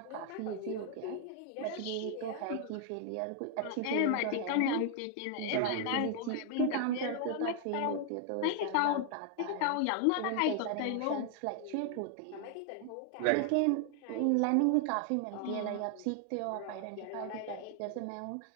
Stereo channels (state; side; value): different; both; correlation 0.00